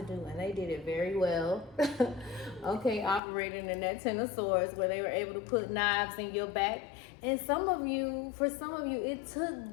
do, and they did it very well. Okay, operating in that Ten of Swords, where they were able to put knives in your back. And for some of you, it took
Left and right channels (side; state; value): right; drops out; at 3.2 s